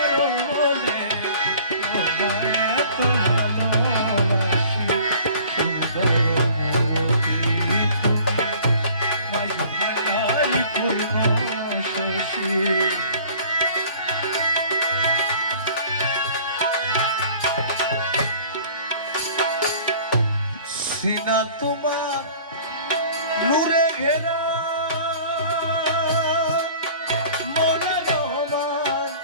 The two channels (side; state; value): both; inverted; correlation -0.49